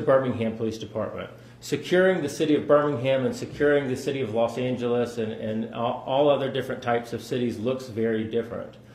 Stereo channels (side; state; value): both; identical; correlation 1.00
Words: Police Department. Securing the city of Birmingham and securing the city of Los Angeles and all other different types of cities looks very different.